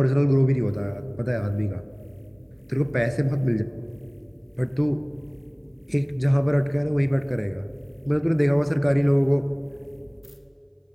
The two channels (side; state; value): both; identical; correlation 1.00